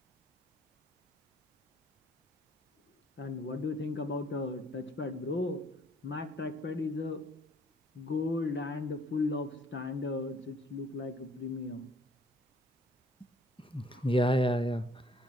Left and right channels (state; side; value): normal; both; correlation 0.61